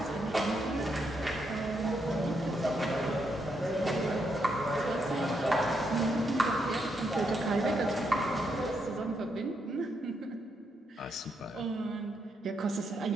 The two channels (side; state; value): both; normal; correlation 0.79